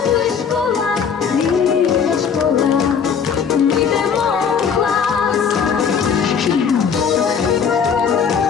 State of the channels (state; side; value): quieter; right; 6.8 dB